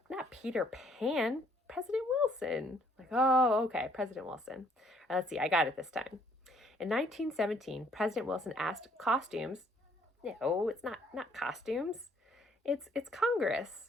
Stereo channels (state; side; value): normal; both; correlation 0.64